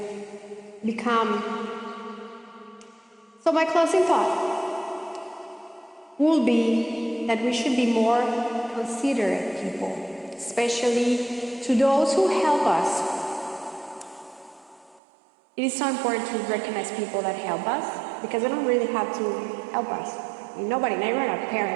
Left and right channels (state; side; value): drops out; left; at 15.0 s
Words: become. So my closing thought will be that we should be more considerate people, especially to those who help us. It is so important to recognize people that help us, because they don't really have to help us. Nobody, not even our